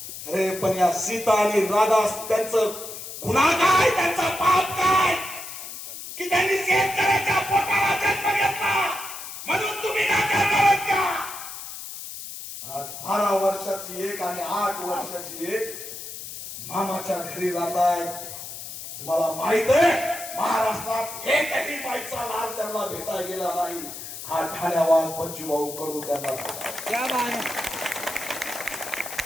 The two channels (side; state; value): left; noise; hiss, 10 dB below the sound